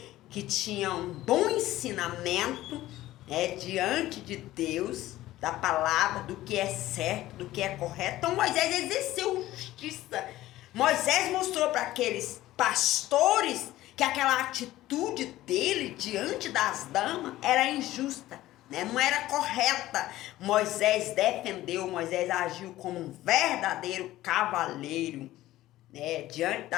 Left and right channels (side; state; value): right; quieter; 15.6 dB